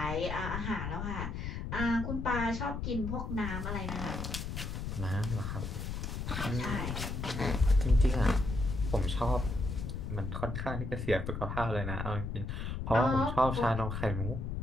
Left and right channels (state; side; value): noise; left; rumble, 4 dB below the sound